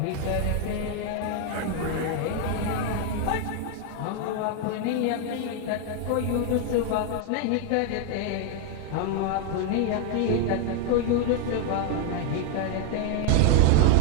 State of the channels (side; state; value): both; different; correlation 0.00